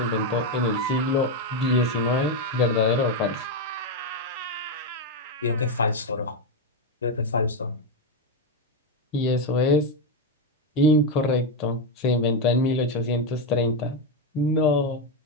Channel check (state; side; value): normal; both; correlation 0.06